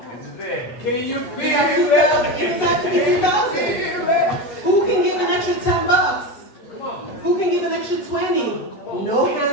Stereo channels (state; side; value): late; right; 8.3 ms